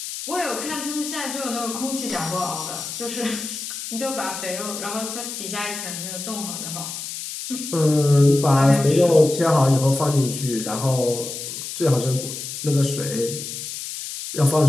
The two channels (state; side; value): noise; left; hiss, 7 dB below the sound